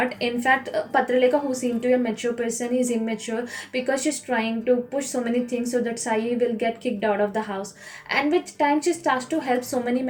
In fact, Patraleka, who seemed to be a mature person, is immature because she's trying to push so many things so that Sai will get kicked out of the house. And with time, she starts to help so many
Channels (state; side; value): identical; both; correlation 1.00